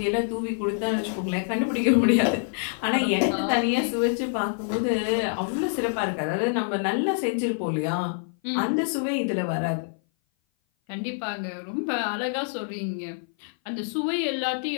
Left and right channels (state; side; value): silent; right; 57 dB below the other